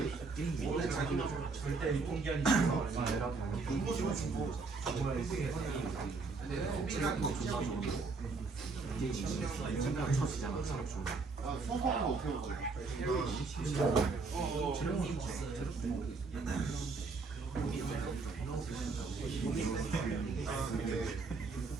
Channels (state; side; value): quieter; left; 4.2 dB